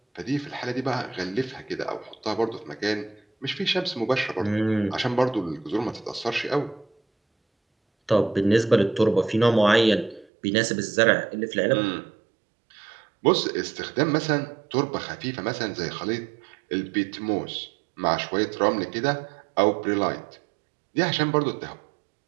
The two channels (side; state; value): left; drops out; at 10.2 s